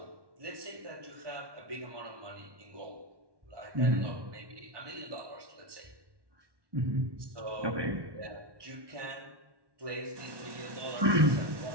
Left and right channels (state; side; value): late; left; 1.1 ms